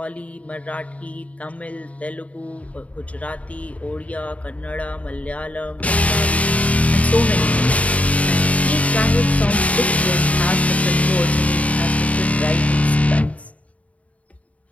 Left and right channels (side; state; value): right; late; 0.067 ms